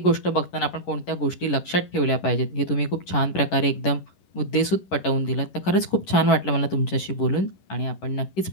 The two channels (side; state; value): right; late; 11 ms